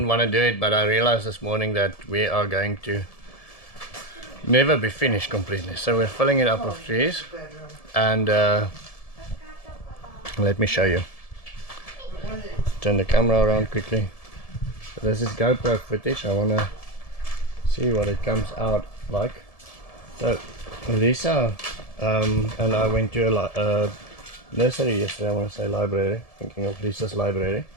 want to do it, but I realized this morning that we are going to never be finished completely. So we're filling it up with trees, and let me show you. Turn the camera around quickly. So this is GoPro footage. I want to see what it comes out like. So Lissa and I went to a nursery yesterday, I want to say library, thinking of Lissa's library,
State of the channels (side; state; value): right; late; 1.7 ms